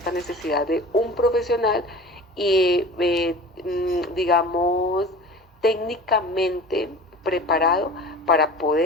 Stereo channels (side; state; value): both; normal; correlation 0.38